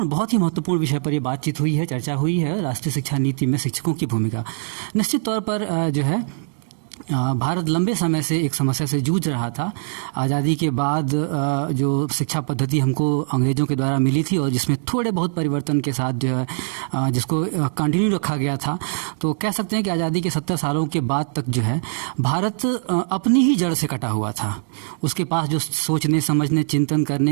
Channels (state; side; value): silent; left; digital silence